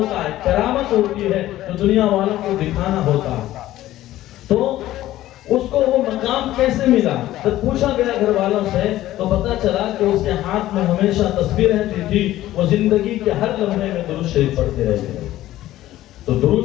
ہے، کرامت ہوتی ہے جو دنیا والوں کو دکھانا ہوتا ہے۔ تو اس کو وہ مقام کیسے ملا؟ جب پوچھا گیا گھر والوں سے تو پتا چلا کہ اس کے ہاتھ میں ہمیشہ تسبیح رہتی تھی، وہ زندگی کے ہر لمحے میں درود شریف پڑھتے رہتے تھے۔ تو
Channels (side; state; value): right; quieter; 14.7 dB